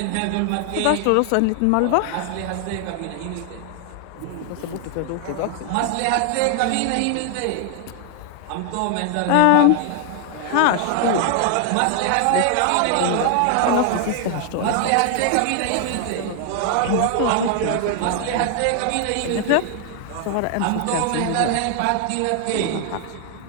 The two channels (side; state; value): both; different; correlation 0.00